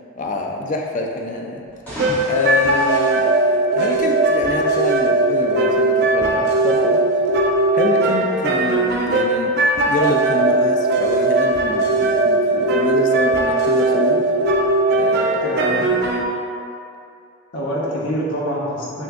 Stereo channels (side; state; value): both; normal; correlation 0.07